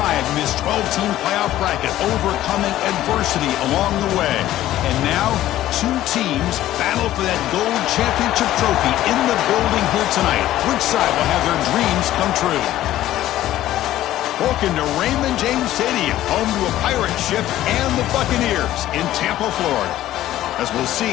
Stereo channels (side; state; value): right; quieter; 13.9 dB